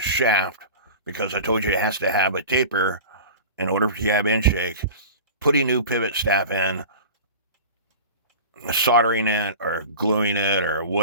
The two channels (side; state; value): both; inverted; correlation -0.35